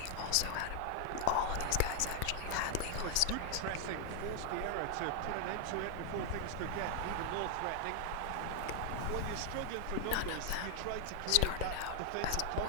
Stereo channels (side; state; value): both; different; correlation 0.00